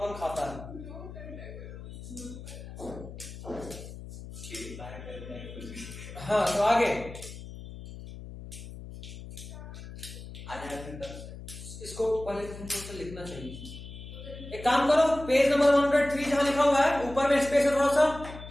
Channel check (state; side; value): noise; left; hum, 12 dB below the sound